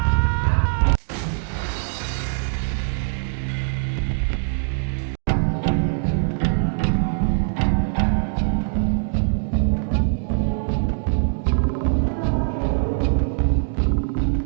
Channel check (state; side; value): silent; left; digital silence